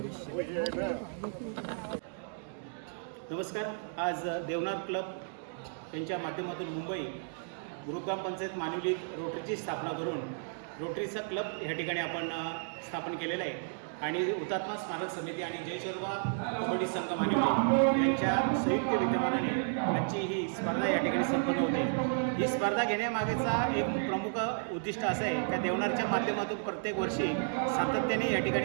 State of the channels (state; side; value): silent; left; digital silence